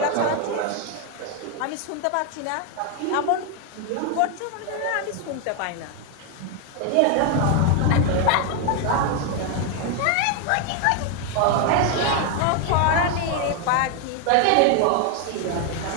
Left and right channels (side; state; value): both; different; correlation 0.01